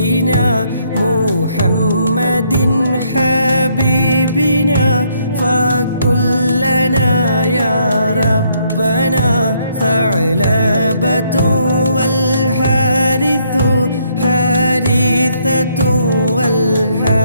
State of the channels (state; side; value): inverted; both; correlation -0.70